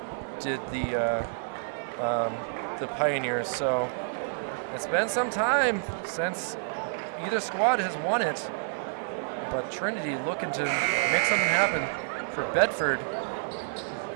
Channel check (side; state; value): left; silent; digital silence